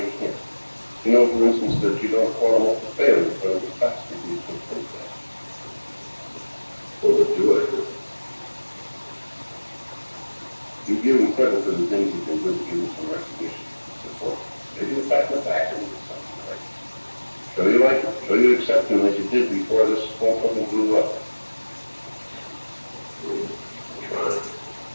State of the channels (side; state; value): both; inverted; correlation -1.00